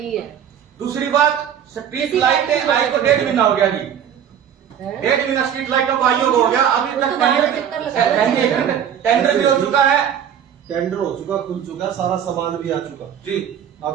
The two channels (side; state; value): left; quieter; 9.0 dB